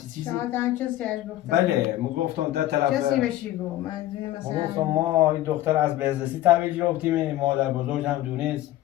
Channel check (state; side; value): quieter; right; 14.5 dB